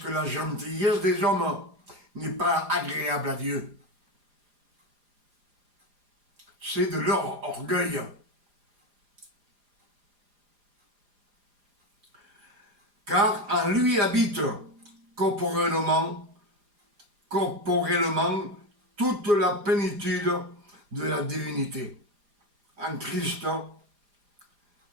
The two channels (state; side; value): late; left; 4.9 ms